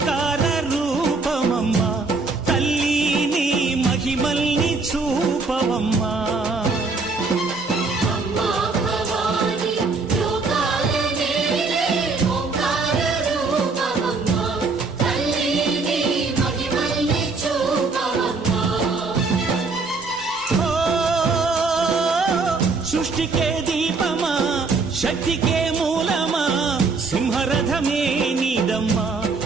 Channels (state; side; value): quieter; left; 4.0 dB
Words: రూపమమ్మా తల్లి మహిమల్ని చూపవమ్మా సృష్టికే దీపమా శక్తికే మూలమా సింహరథమే నీదమ్మా